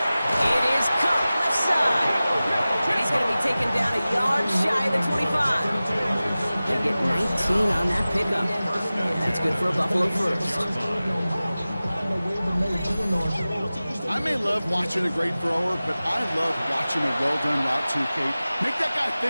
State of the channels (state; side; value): inverted; both; correlation -0.97